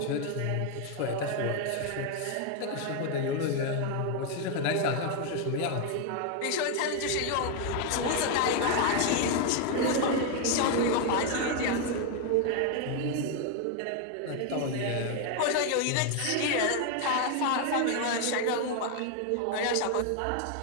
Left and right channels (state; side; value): different; both; correlation 0.01